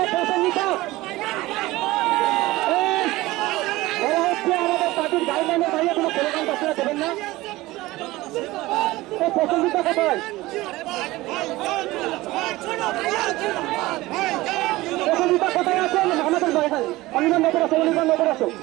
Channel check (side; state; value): left; quieter; 18.9 dB